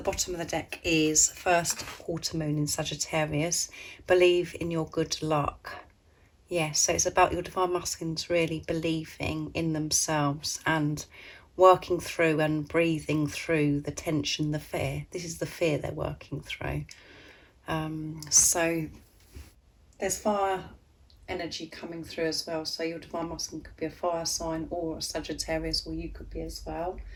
of the deck is first quarter moon in Sagittarius. Believe in your good luck. Yes, so it's about your Divine Masculines really believing in themselves and working through and breathing through the tension, the fear. This is the fear they're working through. So there's fire energy coming through as well. So your Divine Masculine could be a fire sign or a Sagittarius, or you could be as well.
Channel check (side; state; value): both; identical; correlation 1.00